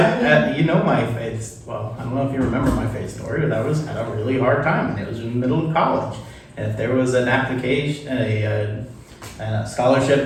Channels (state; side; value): identical; both; correlation 1.00